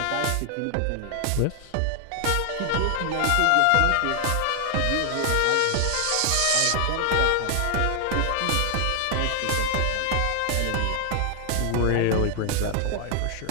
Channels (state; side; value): different; both; correlation 0.00